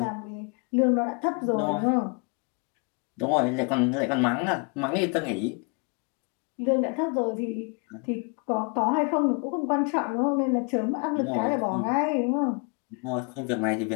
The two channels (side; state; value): right; quieter; 34.3 dB